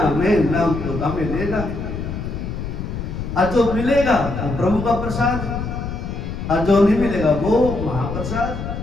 ना हमें लेना। और जो मिलेगा वो प्रभु का प्रसाद, और जो नहीं मिलेगा वो महाप्रसाद।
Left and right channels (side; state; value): left; noise; rumble, 6 dB below the sound